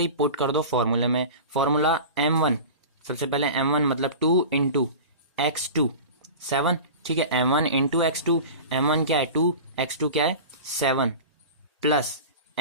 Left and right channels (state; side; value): inverted; both; correlation -0.33